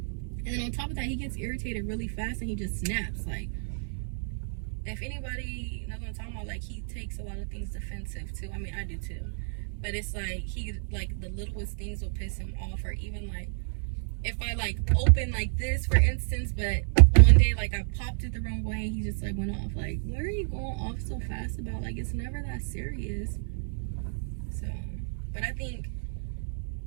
then on top of that, he gets irritated really fast and he just snaps. Like, if anybody knows what I'm talking about, like, he takes a lot of things defensive too. I mean, I do too. But it's like, the littlest things will piss him off. Or even, like, if I like open like this, for instance, but one day like I popped it the wrong way and he just like went off. Like, what are you going off so fast about? Like, it's never that serious. So, but I think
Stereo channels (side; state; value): left; silent; digital silence